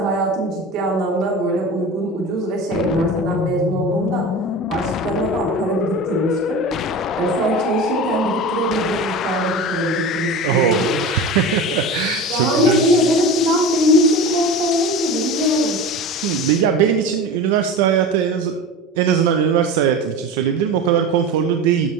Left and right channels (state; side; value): normal; both; correlation 0.31